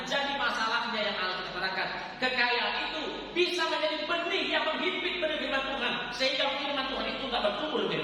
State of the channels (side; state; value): both; identical; correlation 1.00